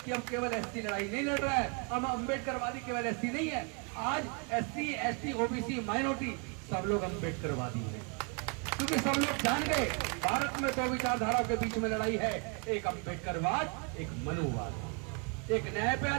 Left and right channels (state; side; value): quieter; left; 34.6 dB